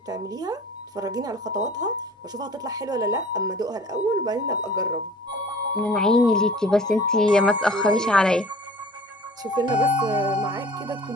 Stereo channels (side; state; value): both; normal; correlation 0.47